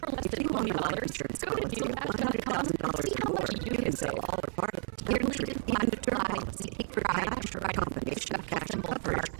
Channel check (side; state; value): left; silent; digital silence